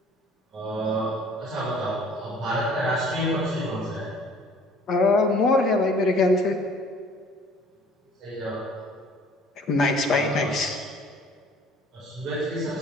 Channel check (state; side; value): normal; both; correlation 0.53